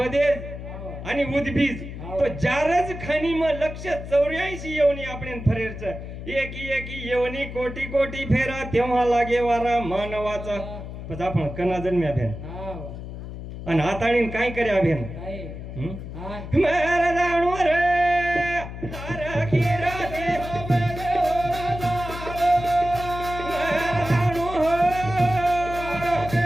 आणि उद्भीज तो जारज खानी म लक्ष 84 योनी आपण फरेरच एकी योनी कोटी कोटी फेरा तेव्हा लागे वारा मानवाचा पण आपण कना जन्म्या भेन आणि हाताळीन काय कर्या भेन मेरा जाणू रे तारा खीरा दे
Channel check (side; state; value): left; noise; hum, 10 dB below the sound